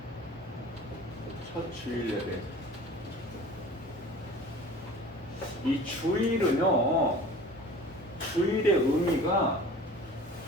첫 주일 예배. 이 주일은요, 주일의 의미가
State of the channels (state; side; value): normal; both; correlation 0.43